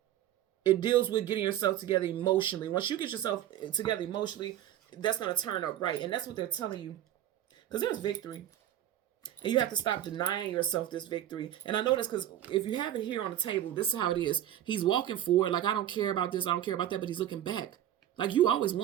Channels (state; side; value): quieter; left; 11.8 dB